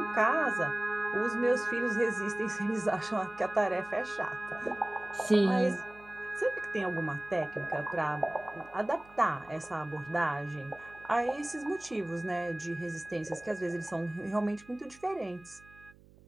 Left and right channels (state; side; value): noise; right; hum, 25 dB below the sound